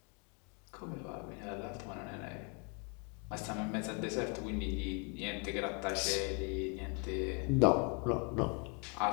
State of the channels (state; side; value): quieter; right; 35.6 dB